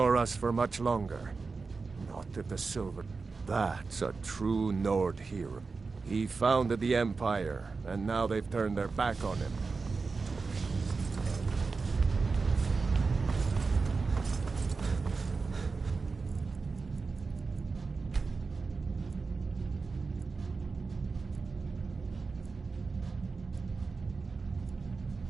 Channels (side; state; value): left; quieter; 4.4 dB